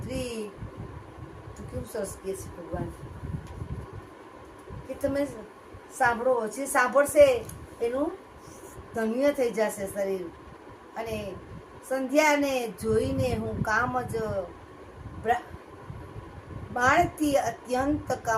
તો કેવું સરસ કે છે ભગવાન કે તમે સાંભળો. જે સાંભળશે એનું ધન્ય થઈ જશે શરીર. અને સંધ્યાને જોઈને હું કામ જ બાળથી અત્યંત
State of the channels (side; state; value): both; identical; correlation 1.00